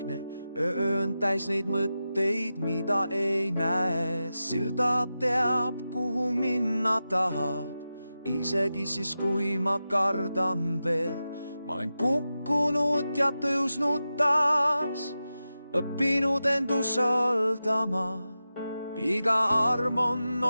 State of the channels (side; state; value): both; inverted; correlation -0.92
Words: öö on täis neid mõtteid, mida ei näe. Silda teab, kuhu minna tahab, isegi siis, kui ma kardan veel. Ma olen kukkunud ja tõusnud taas, õppinud end usaldama. Iga arm on